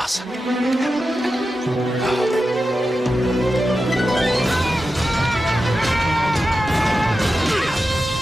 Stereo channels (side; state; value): both; normal; correlation 0.91